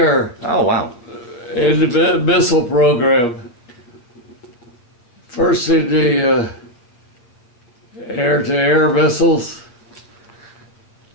Oh, wow. In the missile program. First in the air-to-air missiles,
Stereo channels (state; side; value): late; right; 8.4 ms